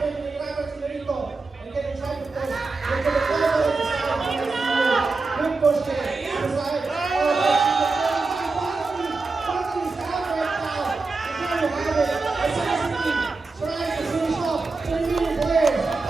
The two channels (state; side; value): quieter; left; 3.9 dB